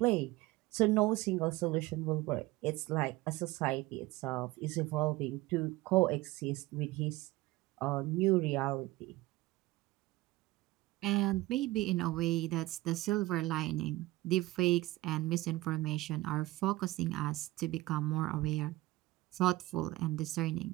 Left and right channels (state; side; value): quieter; left; 18.7 dB